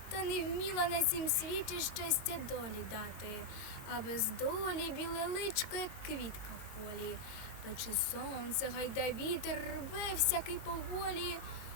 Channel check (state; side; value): late; right; 22 ms